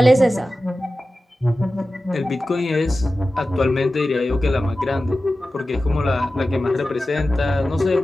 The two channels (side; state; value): both; normal; correlation 0.94